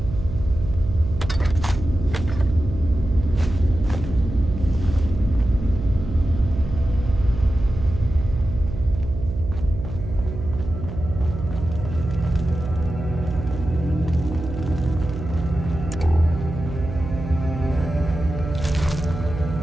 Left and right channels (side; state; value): right; noise; hum, 7 dB below the sound